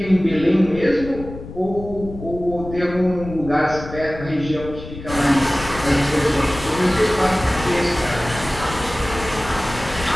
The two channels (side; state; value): left; noise; rumble, 12 dB below the sound